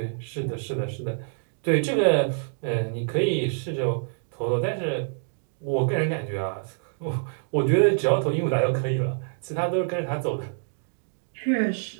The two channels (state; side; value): silent; left; 61 dB below the other